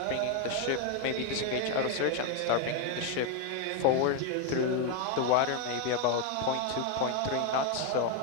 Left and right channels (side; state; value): both; different; correlation 0.01